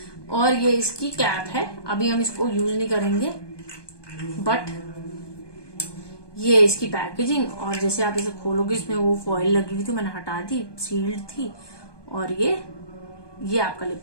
और ये इसकी कैप है, अभी हम इसको यूज नहीं करेंगे, बट ये इसकी पैकेजिंग। और जैसे आप इसे खोलोगे इसमें वो फॉइल लगी हुई थी, मैंने हटा दी, सील्ड थी। और ये आपका लिप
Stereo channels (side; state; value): right; late; 1.2 ms